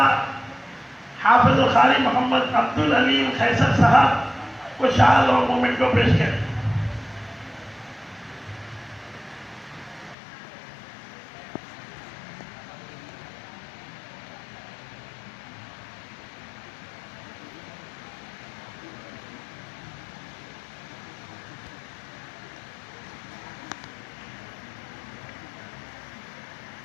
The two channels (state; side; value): drops out; right; at 10.2 s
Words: حافظ القاری محمد عبد العلیم خیسر صاحب کو شال اور مومنٹو پیش کریں.